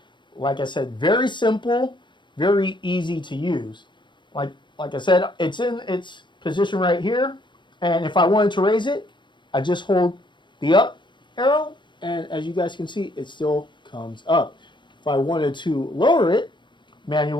Like I said, very simple, very easy to use. Like I said, it's in its position right here, and if I wanted to raise it, I just hold the up arrow, and as you guys can see, it still comes up. If I wanted to lower it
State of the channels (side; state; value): right; late; 0.23 ms